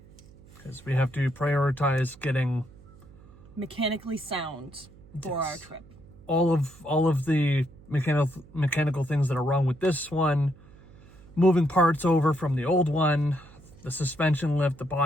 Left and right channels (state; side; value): noise; right; hum, 23 dB below the sound